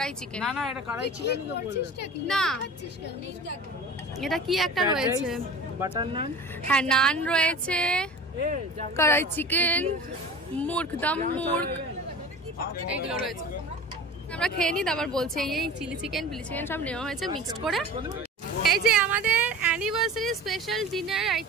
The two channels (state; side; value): normal; both; correlation 0.37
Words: চিকেন। না না এটা কড়াই চিকেন না এটা কি একটা রয়েছে, বাটার নান। হ্যাঁ নান রয়েছে, কড়াই চিকেন, মুর্গ দম মুর্গ, এইগুলো রয়েছে। আমরা খেয়ে নিই তারপর বলছি। এই চিলি চিকেন সব নেওয়া হয়েছে মিক্সড করে। এই যে আমাদের অ্যানিভার্সারি স্পেশাল ডিনার